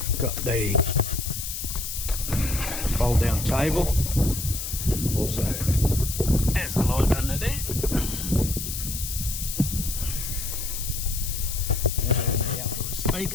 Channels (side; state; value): left; noise; hiss, 5 dB below the sound